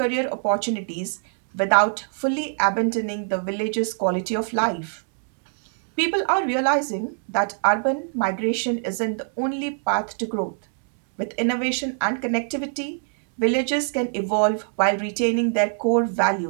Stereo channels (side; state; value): left; silent; digital silence